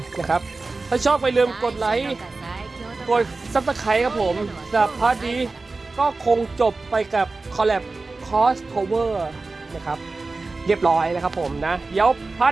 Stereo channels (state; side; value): quieter; left; 3.6 dB